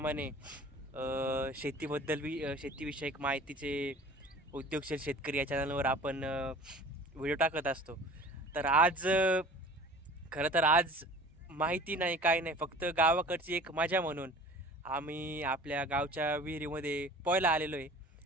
शेतीविषयक माहितीचे उद्योगशील शेतकरी या चॅनलवर आपण व्हिडिओ टाकत असतो. तर आज खरं तर आज माहिती नाही काय नाही, फक्त गावाकडची एक मजा म्हणून आम्ही आपल्या गावच्या विहिरीमध्ये पोहायला आलेलो आहे.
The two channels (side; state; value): both; normal; correlation 0.44